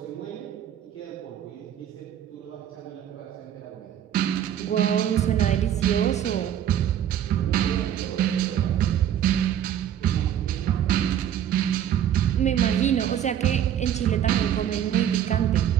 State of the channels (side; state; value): left; quieter; 10.1 dB